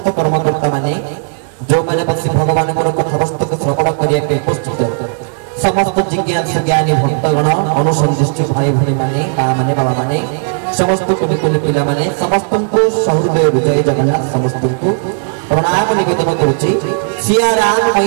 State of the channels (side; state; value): left; silent; digital silence